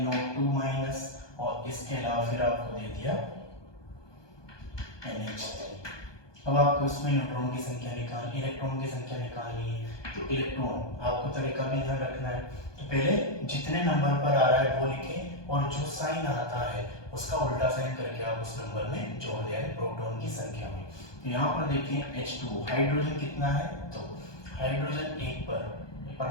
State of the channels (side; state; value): right; late; 1.2 ms